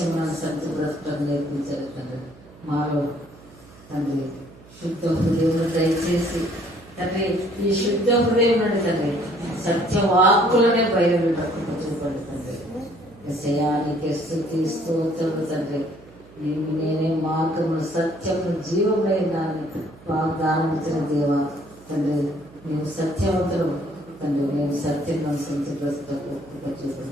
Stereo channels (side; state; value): right; noise; hum, 23 dB below the sound